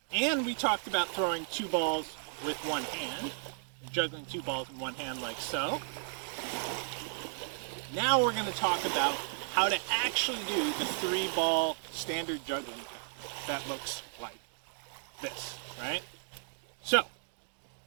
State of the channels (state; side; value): silent; left; digital silence